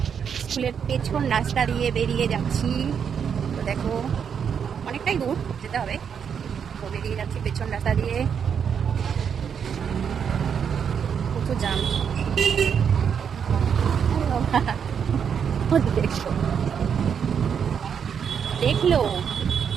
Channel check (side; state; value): left; quieter; 7.4 dB